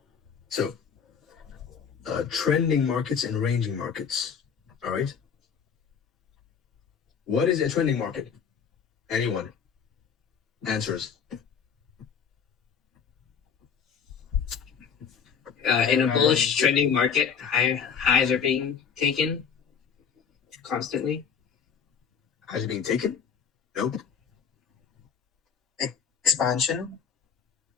So, trending markets and ranging markets. All right. What is a trending market? Anyone? Answers. In a bullish trending market, highs are being taken constantly. Highs are being taken? Nope. Expansion.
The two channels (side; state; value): right; quieter; 6.9 dB